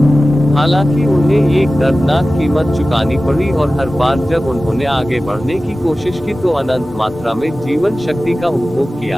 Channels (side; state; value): both; normal; correlation 0.96